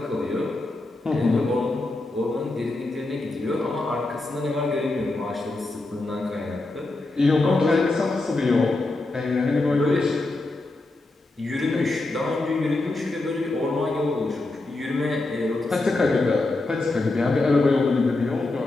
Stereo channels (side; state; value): right; quieter; 3.0 dB